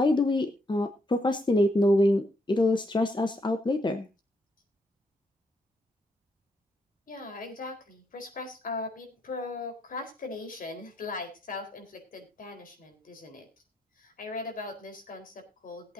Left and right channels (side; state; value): both; normal; correlation 0.77